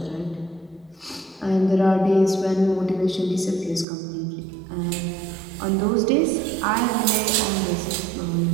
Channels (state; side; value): drops out; left; at 3.9 s